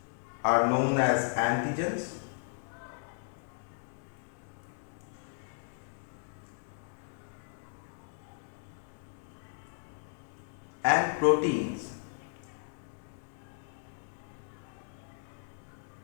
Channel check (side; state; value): right; silent; digital silence